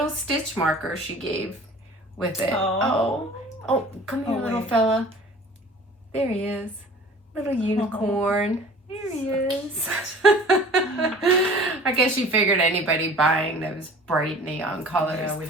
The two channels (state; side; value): normal; both; correlation 0.45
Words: stitch marker she gave with it. Oh, come here, little fella. There he is. Little unicorn. There he is. I guess she figured anybody buying those bright neon colors. Yeah, we'd